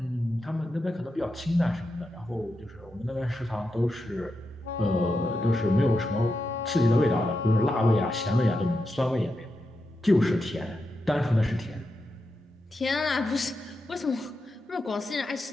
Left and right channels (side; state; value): both; normal; correlation 0.87